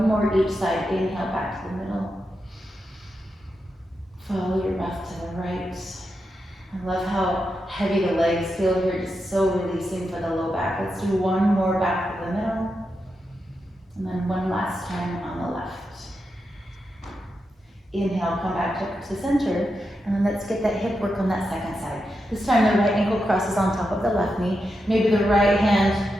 more each side. Inhale back to the middle. Follow your breath to the right. I love how heavy the legs feel here, just so releasing for the low back. Let's do one more back to the middle, and then one last time on the left. Inhale, come back to center, and then let's get that hip work on that second side. This time the right ankle crosses on top of the left knee. Maybe the right hand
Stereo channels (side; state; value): both; normal; correlation 0.87